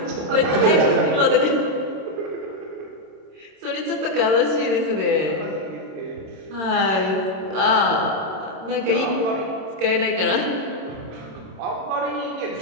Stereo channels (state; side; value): late; left; 27 ms